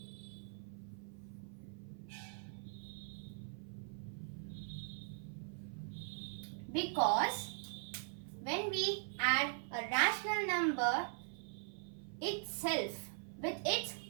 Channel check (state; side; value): silent; left; 50 dB below the other